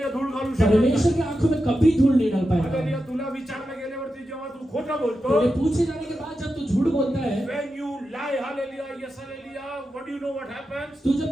धूळ घालू शकत परमेश्वर की आंखों में कभी धूल नहीं डाल आलेली पाएगा। तुला विचारलं गेल्यावरती जेव्हा तू खोटं बोलतो तेरे पूछे जाने के बाद जब तू झूठ बोलता है, when you lie hallelujah yes hallelujah what do you know what happens तू जब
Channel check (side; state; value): both; normal; correlation 0.89